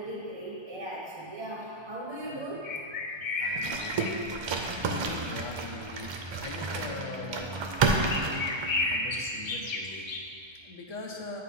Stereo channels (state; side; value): late; left; 1.3 ms